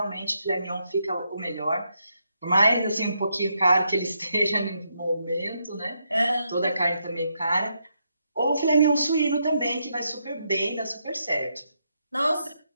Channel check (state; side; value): inverted; both; correlation -0.80